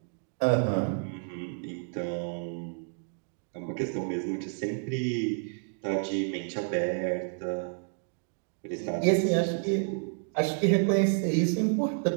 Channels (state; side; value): silent; left; 58 dB below the other